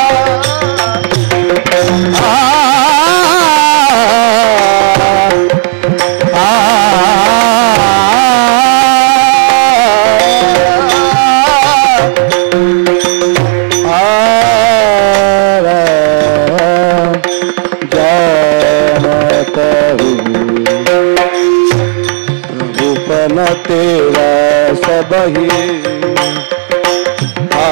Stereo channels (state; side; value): silent; left; digital silence